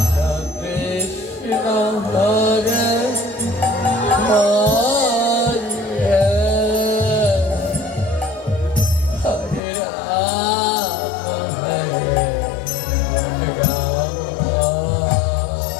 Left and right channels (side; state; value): right; drops out; at 9.6 s